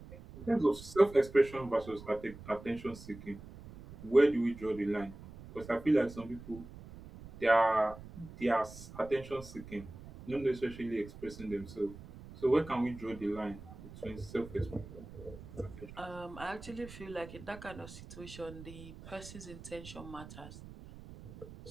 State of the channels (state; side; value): noise; right; rumble, 15 dB below the sound